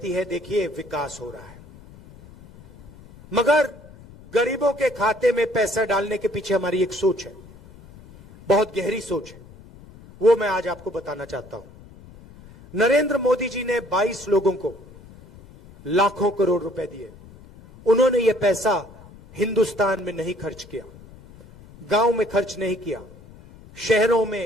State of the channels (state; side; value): noise; left; rumble, 21 dB below the sound